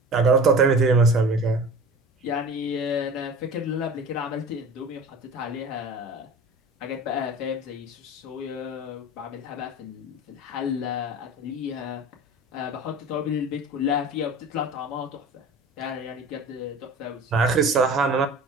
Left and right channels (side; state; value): both; normal; correlation 0.38